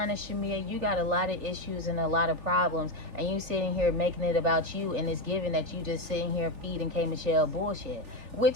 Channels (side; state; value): left; late; 3.4 ms